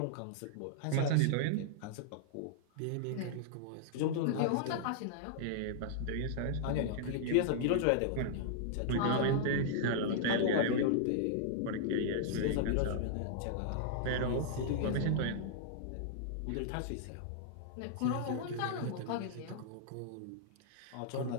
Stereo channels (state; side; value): different; both; correlation -0.01